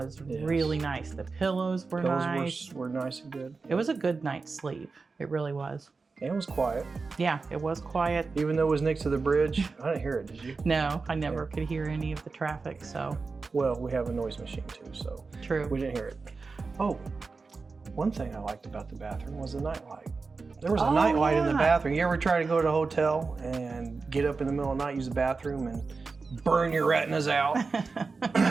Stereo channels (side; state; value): left; quieter; 4.3 dB